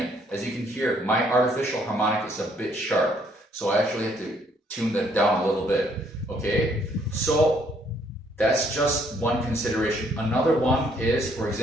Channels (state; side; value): normal; both; correlation 0.66